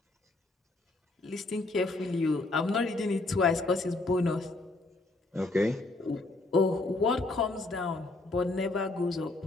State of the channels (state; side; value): quieter; right; 3.1 dB